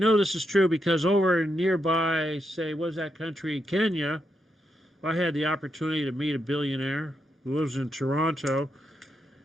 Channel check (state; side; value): normal; both; correlation 0.82